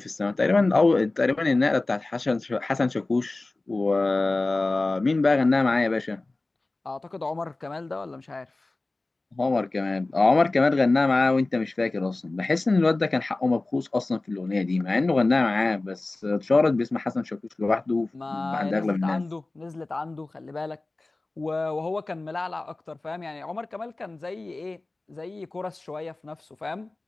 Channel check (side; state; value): right; quieter; 3.1 dB